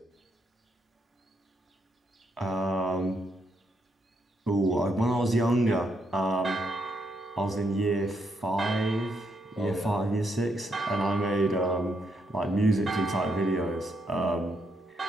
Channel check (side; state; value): both; normal; correlation 0.77